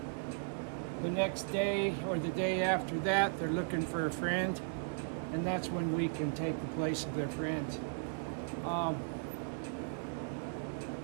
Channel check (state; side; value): silent; left; digital silence